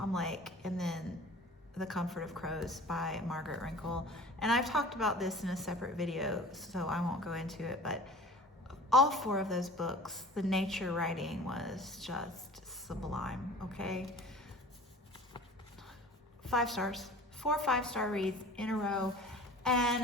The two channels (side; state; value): both; normal; correlation 0.43